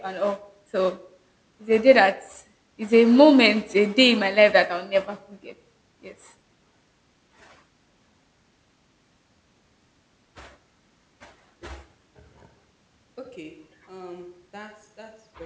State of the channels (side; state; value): both; identical; correlation 1.00